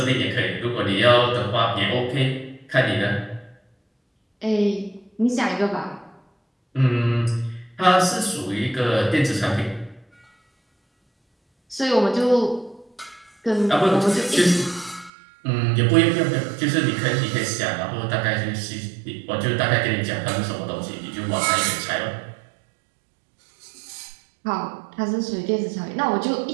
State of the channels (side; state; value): left; drops out; at 15.1 s